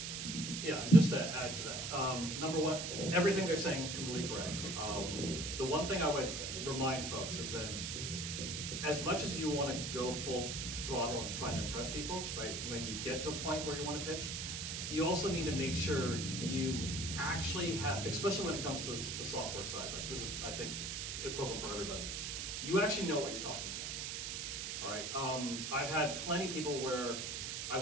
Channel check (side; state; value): right; noise; hiss, 4 dB below the sound